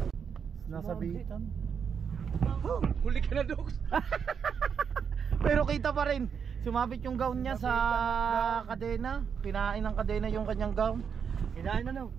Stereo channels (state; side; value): quieter; left; 6.9 dB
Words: Nasa bitan. Huli ka na, Dogs. Pero kita pa rin. Sumabit yung gown niya sa kadena. Kinain ng kadena yung kanyang gown. Kinain na no.